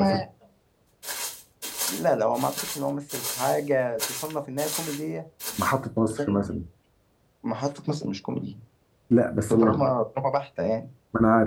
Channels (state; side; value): identical; both; correlation 1.00